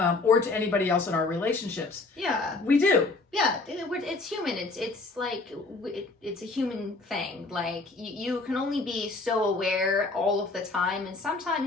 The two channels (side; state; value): right; quieter; 3.5 dB